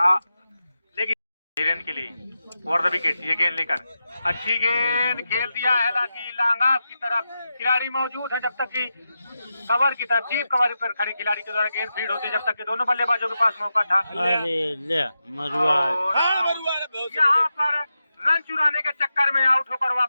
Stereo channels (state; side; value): inverted; both; correlation -0.89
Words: लेकिन धीरेन के लिए ओवर द विकेट। ये गेंद लेकर अच्छी गेंद खेल दिया है हालांकि लांगास की तरफ खिलाड़ी मौजूद है। जब तक कि कवर की तरफ डीप कवर पर खड़े खिलाड़ी के द्वारा गेंद फीड होती जब तक कि दोनों बल्लेबाजों के पास मौका था। यहाँ पर रन चुराने के चक्कर में आउट होकर